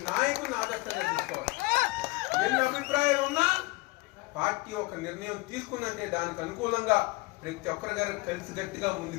నాయకులను ఆదర్శంగా తీసుకోవాలి. ఎన్ని అభిప్రాయాలు ఉన్నా పార్టీ ఒక నిర్ణయం తీసుకుందంటే దానికి అనుకూలంగా ప్రతి ఒక్కరి గారు కలిసి గట్టిగా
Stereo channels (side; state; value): right; quieter; 23.5 dB